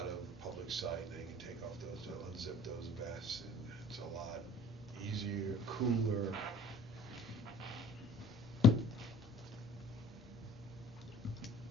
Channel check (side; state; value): both; normal; correlation 0.51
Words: of the public sight, they can take off those, unzip those vests, and it's a lot easier, cooler.